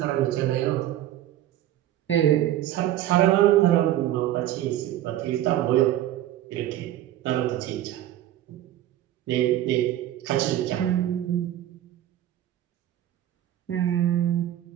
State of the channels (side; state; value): left; quieter; 12.9 dB